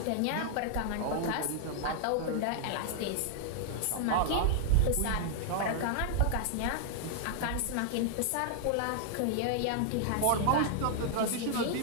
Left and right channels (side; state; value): both; different; correlation -0.01